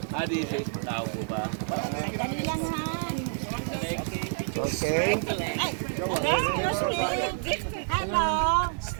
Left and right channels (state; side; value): silent; left; digital silence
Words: Di siya tao po ba? Sandali lang han. Okay. Ay, okay, hello.